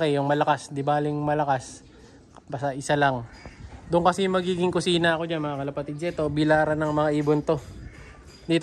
yung malakas, di baling malakas. Basta isa lang. Doon kasi magiging kusina ako dyan, mga kalapatids. Ito, bilaran ng mga ibon to.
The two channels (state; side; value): identical; both; correlation 1.00